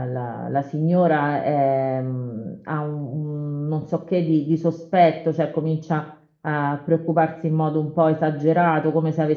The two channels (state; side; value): identical; both; correlation 1.00